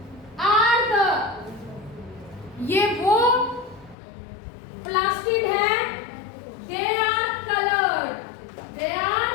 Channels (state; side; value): drops out; right; at 4.0 s